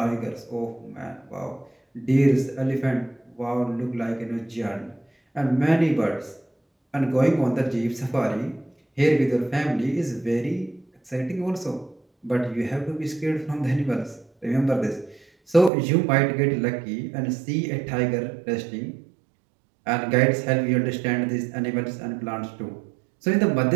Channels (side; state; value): left; drops out; at 15.7 s